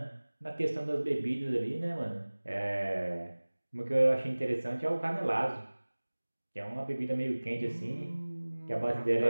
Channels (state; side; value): inverted; both; correlation -1.00